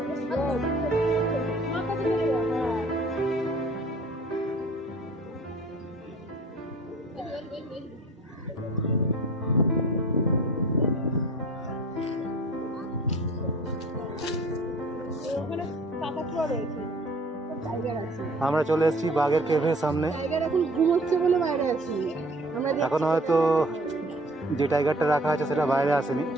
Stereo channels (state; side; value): normal; both; correlation 0.49